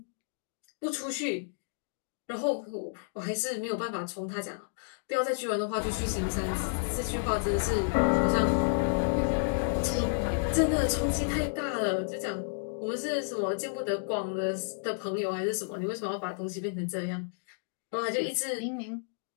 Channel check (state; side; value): silent; right; digital silence